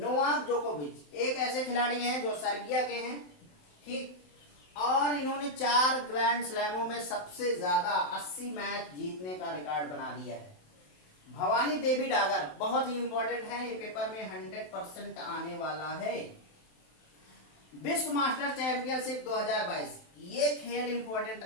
जोकोविच एक ऐसे खिलाड़ी हैं जो सर्बिया के हैं। ठीक, और इन्होंने 4 ग्रैंड स्लैमों में सबसे ज्यादा 80 मैच जीतने का रिकॉर्ड बना दिया है। भवानी देवी डागर बहुत ही इंपॉर्टेंट है, ये पेपर में 100% आने वाला है। विश्व मास्टर चैंपियनशिप 2022 ये खेल इंपॉर्टेंट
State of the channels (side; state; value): right; late; 27 ms